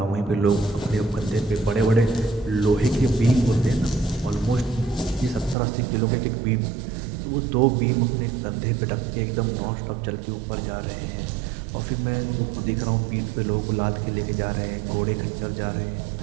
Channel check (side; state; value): left; drops out; at 5.6 s